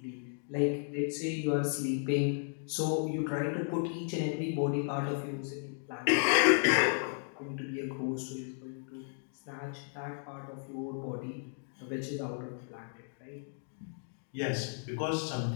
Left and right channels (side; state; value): right; silent; 55 dB below the other